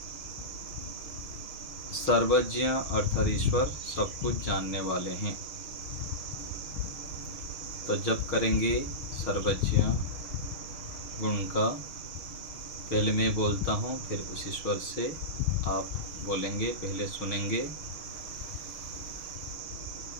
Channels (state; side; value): late; right; 6.4 ms